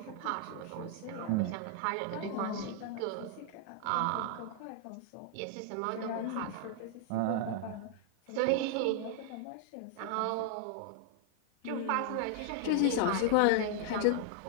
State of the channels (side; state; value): both; different; correlation 0.00